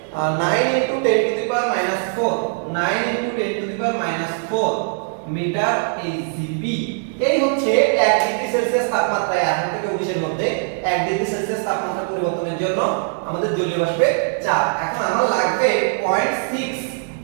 9 × 10 to the power -4 9 × 10 to the power -4 meter HGB. এই হচ্ছে 1 ডিগ্রি সেলসিয়াস তাপমাত্রায় 18 থেকে 19 এর মধ্যে 1 ডিগ্রি সেলসিয়াস তাপমাত্রা পরিবর্তনের জন্য আমাদের জলীয় বাষ্পের চাপ। এখন আমার লাগবে 0.6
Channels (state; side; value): silent; left; 65 dB below the other